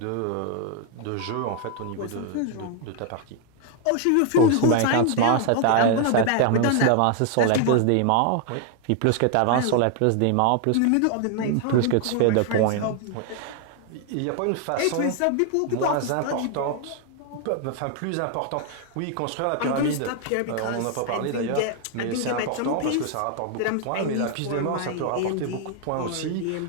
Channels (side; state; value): both; different; correlation 0.00